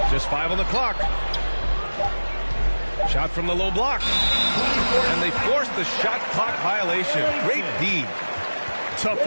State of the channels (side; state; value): both; inverted; correlation -1.00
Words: Just 5 on the clock. Shot from the low block. And they force the shot clock violation. Great D. Tough